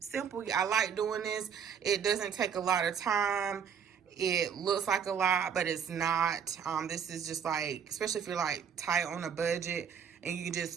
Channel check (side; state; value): left; quieter; 7.4 dB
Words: I like doing this. It doesn't take a lot of time. it looks like a lot, but it's not. This is just like, especially if you're like tight on a budget, and you can just